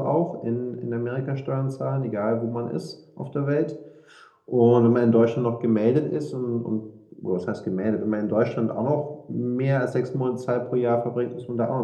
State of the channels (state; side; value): identical; both; correlation 1.00